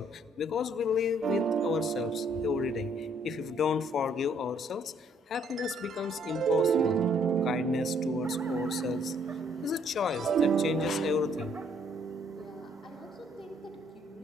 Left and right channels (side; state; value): both; normal; correlation 0.65